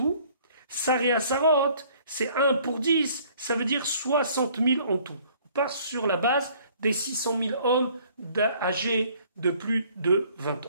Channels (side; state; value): both; inverted; correlation -0.57